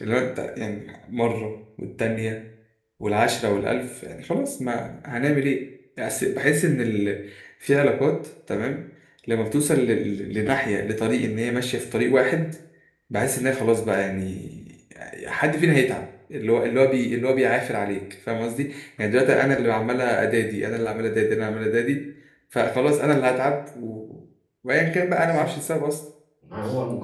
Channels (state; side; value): identical; both; correlation 1.00